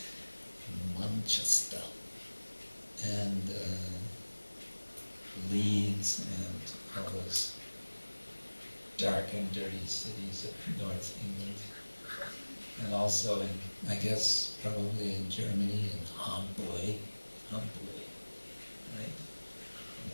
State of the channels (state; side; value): inverted; both; correlation -1.00